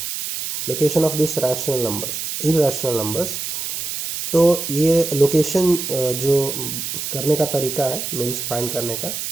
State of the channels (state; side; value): noise; right; hiss, 5 dB below the sound